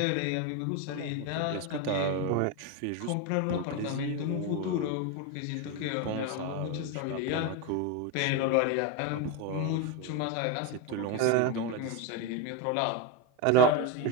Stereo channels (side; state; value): both; different; correlation 0.03